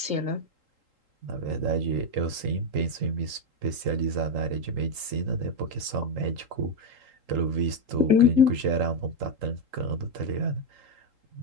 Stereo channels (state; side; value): late; left; 3.8 ms